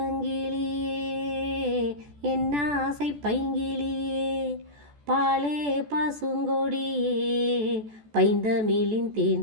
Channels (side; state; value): left; late; 14 ms